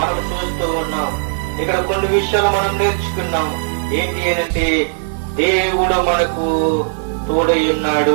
మనం చూస్తూ ఉన్నాం. ఇక్కడ కొన్ని విషయాలు మనం నేర్చుకున్నాం. ఏంటి అనంటే దేవుడు మనకు తోడై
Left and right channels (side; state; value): left; silent; 59 dB below the other